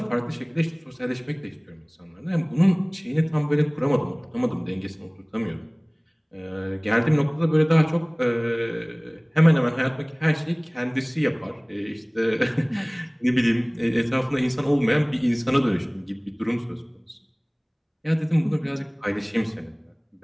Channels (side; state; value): both; identical; correlation 1.00